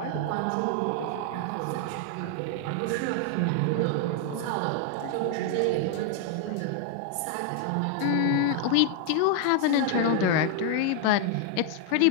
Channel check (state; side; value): different; both; correlation 0.00